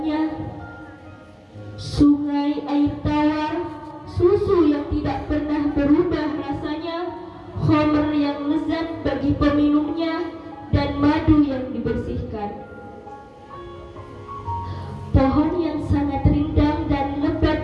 Sungai air tawar, susu yang tidak pernah berubah rasanya, khamr yang lezat bagi peminumnya, dan madu yang dibersihkan. Pohon yang sangat rindang dan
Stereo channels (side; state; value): both; identical; correlation 1.00